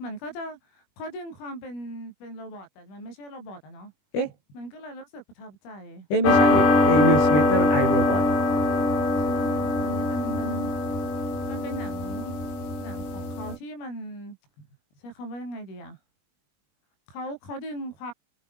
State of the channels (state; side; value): late; right; 20 ms